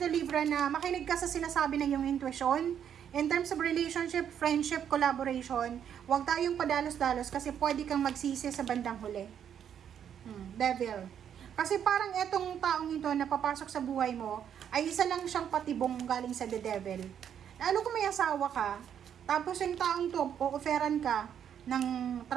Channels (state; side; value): quieter; left; 8.9 dB